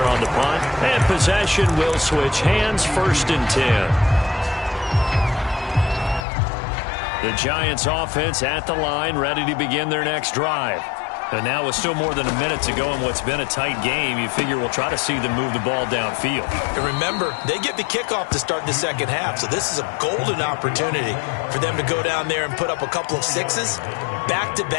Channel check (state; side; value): drops out; right; at 6.2 s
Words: on the punt. And possession will switch hands, 1st and 10. The Giants offense at the line, ready to begin their next drive. And now with still more than a minute to go in what's been a tight game, you figure we'll try to see them move the ball downfield. And remember, they get the kickoff to start the second half, so this is a golden opportunity for them to go down there and put up a couple of sixes